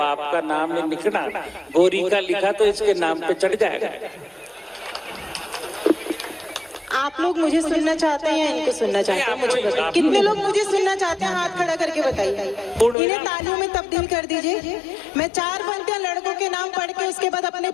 का नाम नहीं लिखना, गोरी का लिखा तो इसके नाम पे चढ़ जाएगा। आप लोग मुझे सुनना चाहते हैं या इनको सुनना चाहते हैं? मुझे बताइए, कितने लोग मुझे सुनना चाहते हैं? हाथ खड़ा करके बताइए। इन्हें तालियों में तब्दील कर दीजिए। मैं 4 पंक्तियां लड़कों के नाम पढ़ के उसके बाद अपने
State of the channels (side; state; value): right; drops out; at 13.0 s